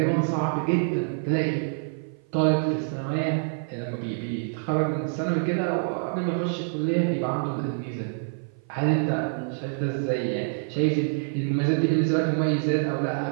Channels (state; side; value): silent; left; 55 dB below the other